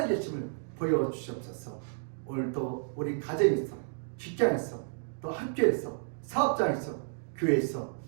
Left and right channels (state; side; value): silent; left; digital silence